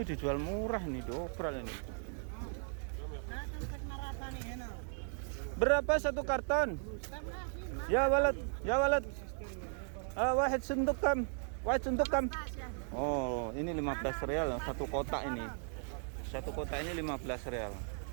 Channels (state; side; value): silent; left; 53 dB below the other